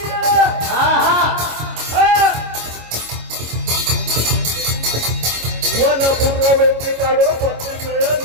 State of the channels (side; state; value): left; late; 25 ms